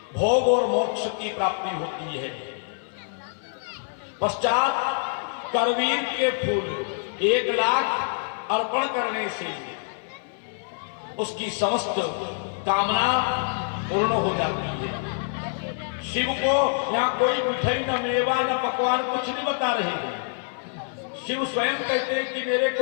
भोग और मोक्ष की प्राप्ति होती है। पश्चात करवीर के फूल 1 लाख अर्पण करने से उसकी समस्त कामना पूर्ण हो जाती है। शिव को यहाँ कोई मिठाई न मेवा न पकवान कुछ नहीं बता रहे हैं। शिव स्वयं कहते हैं कि मेरे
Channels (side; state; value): right; silent; 61 dB below the other